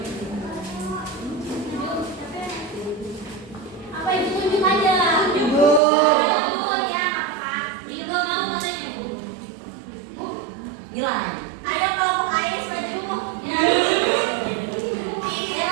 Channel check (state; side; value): drops out; left; at 5.8 s